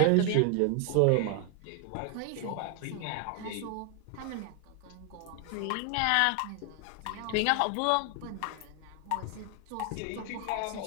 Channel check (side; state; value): both; different; correlation 0.00